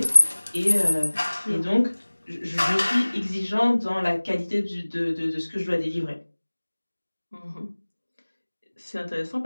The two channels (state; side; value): inverted; both; correlation -1.00